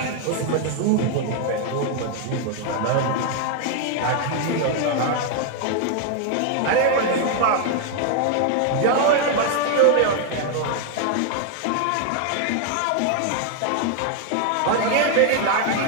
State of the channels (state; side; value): different; both; correlation 0.00